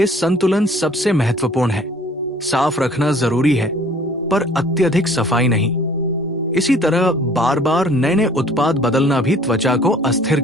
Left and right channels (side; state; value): both; normal; correlation 0.53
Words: संतुलन सबसे महत्वपूर्ण है। साफ रखना जरूरी है, पर अत्यधिक सफाई नहीं। इसी तरह बार बार नए नए उत्पाद बदलना भी त्वचा को अस्थिर